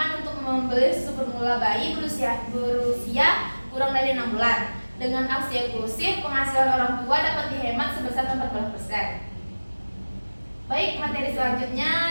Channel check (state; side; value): inverted; both; correlation -1.00